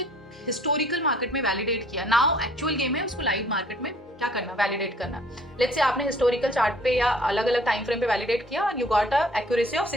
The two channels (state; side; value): normal; both; correlation 0.57